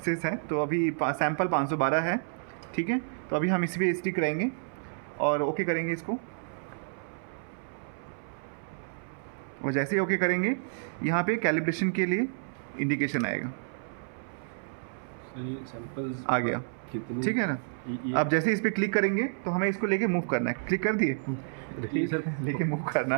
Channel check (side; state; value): left; silent; 58 dB below the other